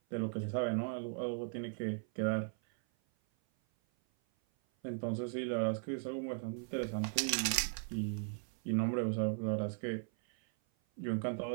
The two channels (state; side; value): silent; left; 53 dB below the other